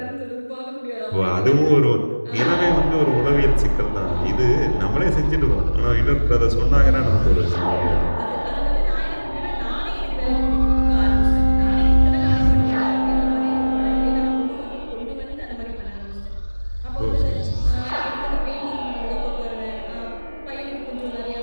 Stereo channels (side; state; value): both; inverted; correlation -1.00